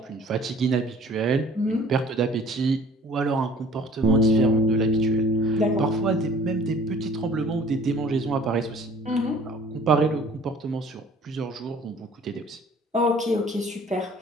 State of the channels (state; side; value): normal; both; correlation 0.51